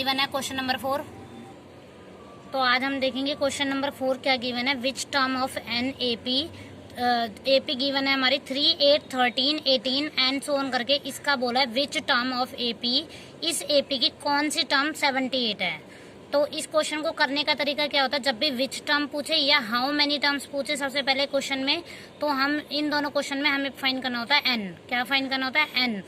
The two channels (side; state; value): both; identical; correlation 1.00